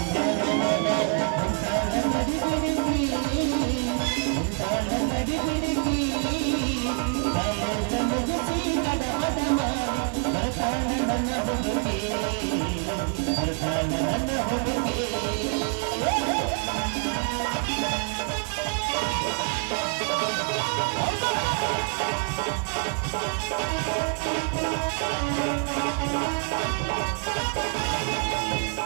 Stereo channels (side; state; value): left; quieter; 37.6 dB